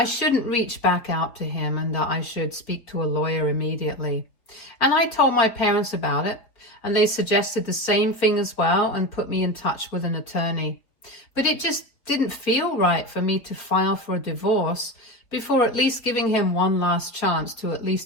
shouldn't reach back out to him and that I should speak to a lawyer immediately. And I told my parents about it, and they suggested the same thing as well and put me in touch with an attorney. But it just didn't feel right for me to file for a divorce before at least giving him one last chance to at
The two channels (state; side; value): late; right; 4.0 ms